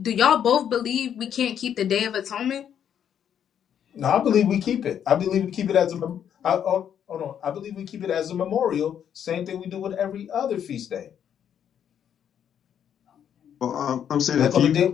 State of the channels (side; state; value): right; quieter; 9.0 dB